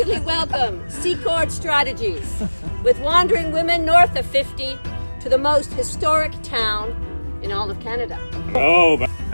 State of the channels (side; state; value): both; inverted; correlation -1.00